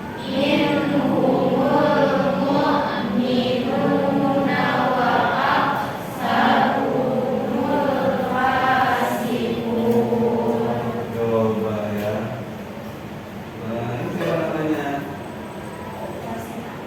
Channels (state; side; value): identical; both; correlation 1.00